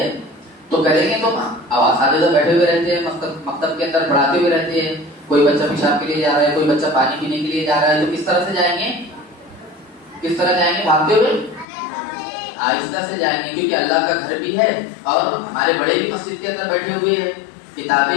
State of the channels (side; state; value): right; drops out; at 11.7 s